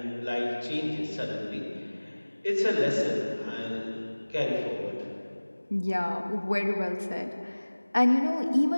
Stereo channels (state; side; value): inverted; both; correlation -1.00